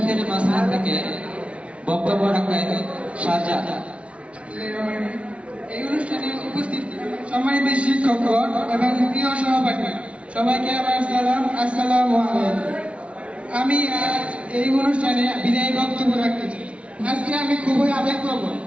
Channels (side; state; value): left; late; 0.062 ms